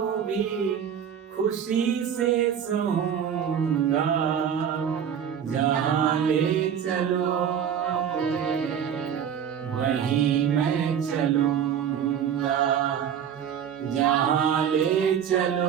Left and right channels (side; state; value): left; quieter; 8.4 dB